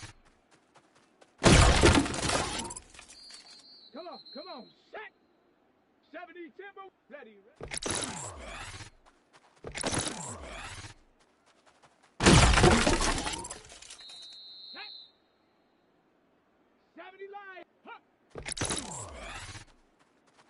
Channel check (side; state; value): both; identical; correlation 1.00